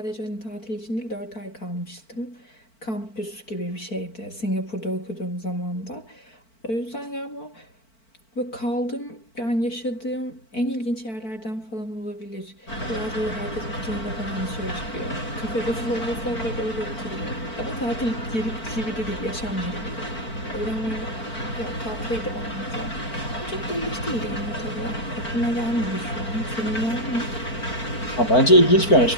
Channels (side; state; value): right; late; 4.5 ms